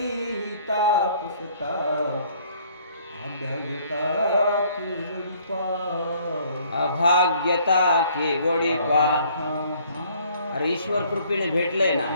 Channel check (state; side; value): inverted; both; correlation -0.60